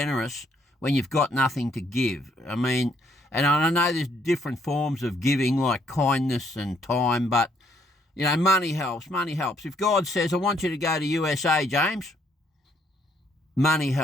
when you've got nothing to give. I mean, and I know there's different forms of giving, like kindness and time, but, you know, money helps. Money helps. If God says, I want you to go to USA, James, money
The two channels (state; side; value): normal; both; correlation 0.69